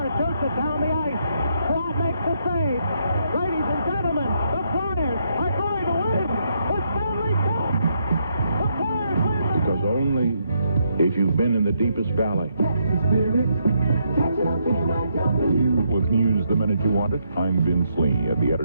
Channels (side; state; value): both; inverted; correlation -0.76